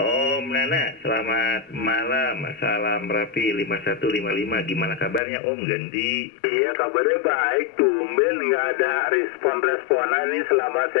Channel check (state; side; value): drops out; right; at 5.2 s